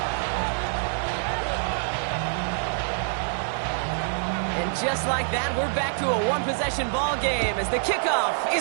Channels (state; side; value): silent; left; digital silence